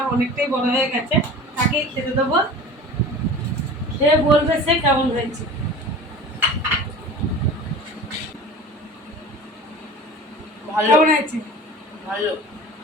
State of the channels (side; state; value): both; normal; correlation 0.38